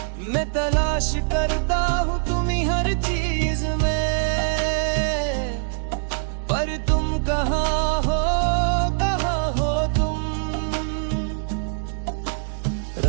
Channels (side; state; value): left; silent; digital silence